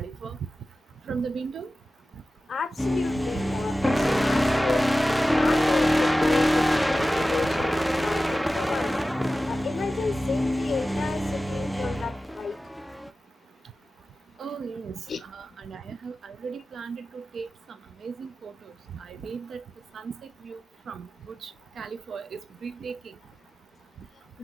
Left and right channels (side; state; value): both; normal; correlation 0.95